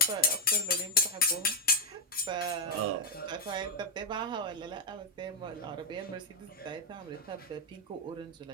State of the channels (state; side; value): normal; both; correlation 0.01